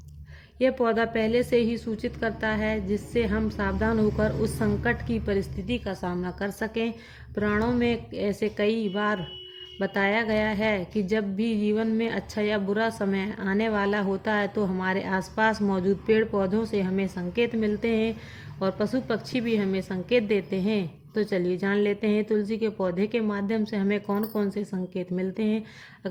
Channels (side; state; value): both; identical; correlation 1.00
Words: यह पौधा पहले से ही सूचित करता है जिससे हम सावधान होकर उस संकट की परिस्थिति का सामना कर सकें। पुराणों में ऐसे कई बार बताया गया है कि जब भी जीवन में अच्छा या बुरा समय आने वाला होता है तो हमारे आसपास मौजूद पेड़ पौधों से हमें संकेत मिलते हैं और पशु पक्षी भी हमें संकेत देते हैं। तो चलिए जान लेते हैं तुलसी के पौधे के माध्यम से हमें कौन कौन से संकेत मिलते हैं।